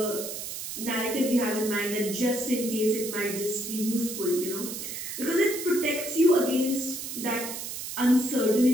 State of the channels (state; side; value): noise; right; hiss, 7 dB below the sound